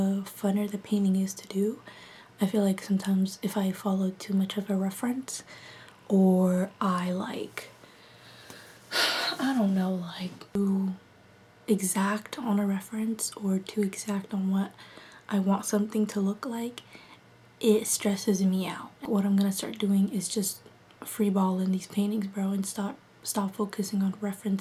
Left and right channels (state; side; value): identical; both; correlation 1.00